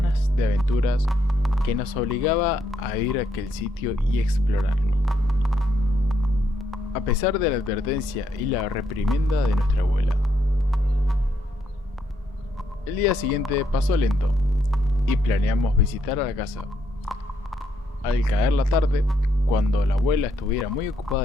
de aventuras que nos obligaba a ir a aquel sitio y explorarlo. A pesar de la advertencia y la reprimenda de nuestra abuela. El día siguiente pasó lento y planeamos visitar a la casa. Al caer la tarde, cuando la abuela estuviera muy ocupada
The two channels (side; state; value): both; normal; correlation 0.76